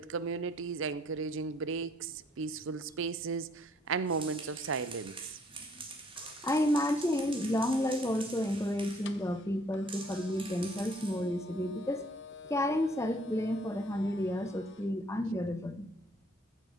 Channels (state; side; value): normal; both; correlation 0.62